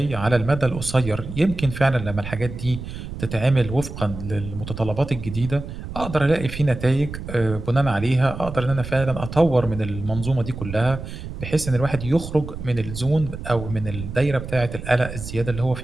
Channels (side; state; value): right; noise; rumble, 9 dB below the sound